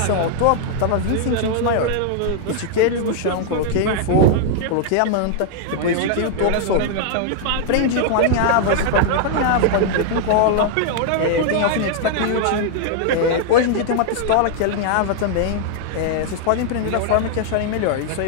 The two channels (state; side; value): different; both; correlation 0.00